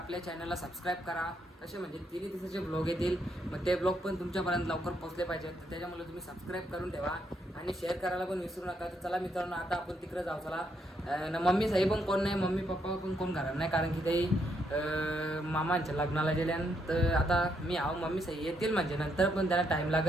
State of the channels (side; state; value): both; normal; correlation 0.76